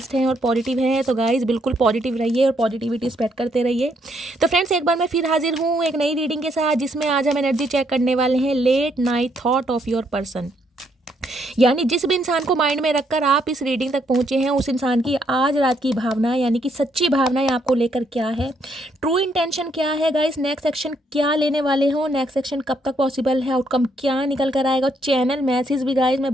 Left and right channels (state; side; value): normal; both; correlation 0.73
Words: हैं और पॉजिटिव हैं। तो गाइस बिल्कुल पॉजिटिव रहिए और पॉजिटिविटी स्प्रेड करते रहिए। तो फ्रेंड्स एक बार मैं फिर हाजिर हूँ एक नई रीडिंग के साथ, जिसमें आज हम एनर्जी चेक करने वाले हैं late night thought of your person. यानी जिस भी इंसान को माइंड में रखकर आप इस रीडिंग तक पहुंचे हैं, उस इंसान की आज रात की भावना यानी कि सच्ची भावनाएं आपको लेकर क्या है, ट्रू इंटेंशन क्या है गाइस, नेक्स्ट एक्शन क्या लेने वाले हो, नेक्स्ट एक्शन कब तक पॉसिबल है, आउटकम क्या निकल कर आएगा। चैनल मैसेज भी गाइस मैं